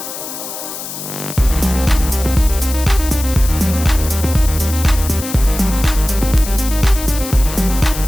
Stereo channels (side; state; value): left; noise; hiss, 9 dB below the sound